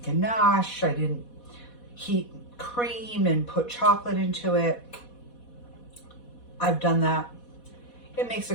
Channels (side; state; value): right; late; 4.1 ms